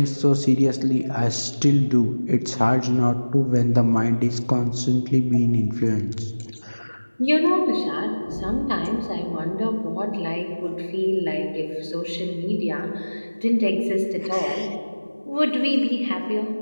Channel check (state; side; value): inverted; both; correlation -1.00